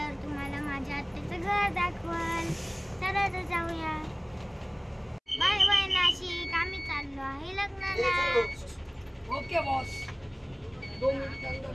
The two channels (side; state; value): both; identical; correlation 1.00